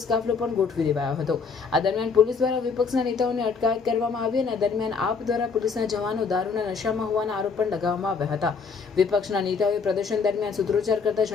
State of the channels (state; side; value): quieter; right; 5.3 dB